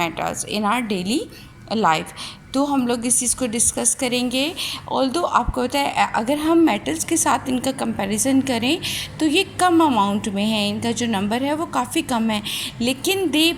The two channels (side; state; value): both; identical; correlation 1.00